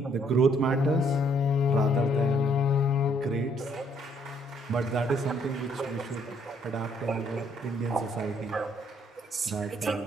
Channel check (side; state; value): both; normal; correlation 0.67